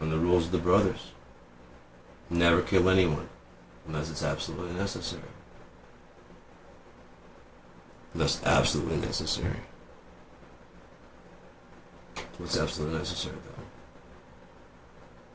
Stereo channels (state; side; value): identical; both; correlation 1.00